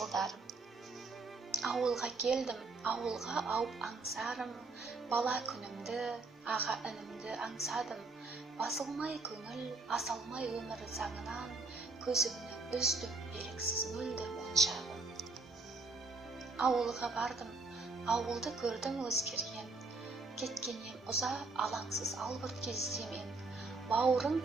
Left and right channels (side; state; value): left; quieter; 3.7 dB